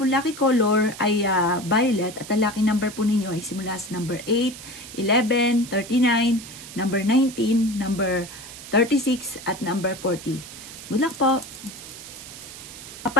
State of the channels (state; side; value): noise; right; hiss, 14 dB below the sound